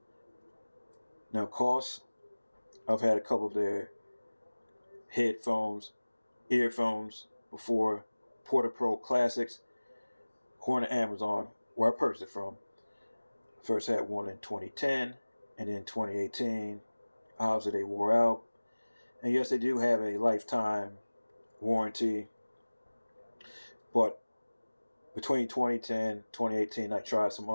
Now Koss, I've had a couple of their earphones before. Porta Pro Classics, on Amazon, where I purchased it from. First had one in 2010, and then 2018. Obviously they wore out. And yes, they do have a lifetime warranty, but between 2010 2018 I tried some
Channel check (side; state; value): both; inverted; correlation -1.00